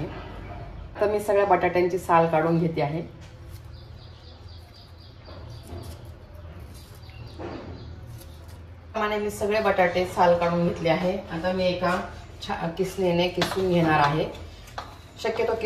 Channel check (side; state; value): both; identical; correlation 1.00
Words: तर मी सगळ्या बटाट्यांची साल काढून घेते आहे। मी सगळे बटाटे साल काढून घेतले आहे। आता मी एका किसणीने किसून घेणार आहे। शक्यतो